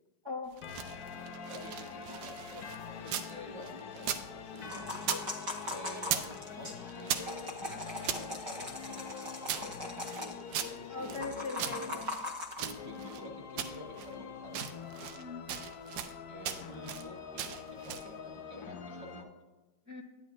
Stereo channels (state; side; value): late; left; 5.7 ms